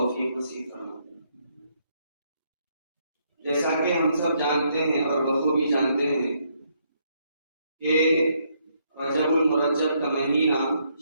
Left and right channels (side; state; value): both; inverted; correlation -0.73